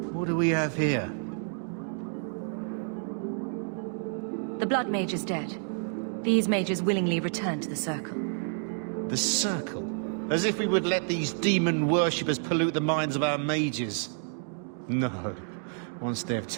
What do we have here? The Blood Mage is dead. These mages willingly returned to the Circle. The Circle? As if we would let these demon worshippers pollute the minds of our mages. No. Once they've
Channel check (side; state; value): left; silent; 58 dB below the other